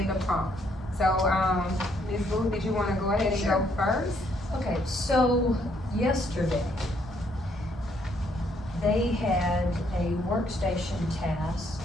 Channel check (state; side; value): normal; both; correlation 0.70